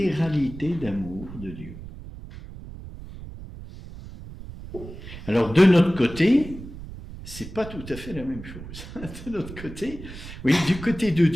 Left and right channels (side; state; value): right; noise; rumble, 13 dB below the sound